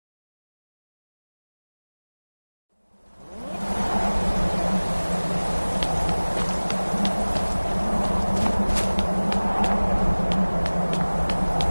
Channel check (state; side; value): inverted; both; correlation -1.00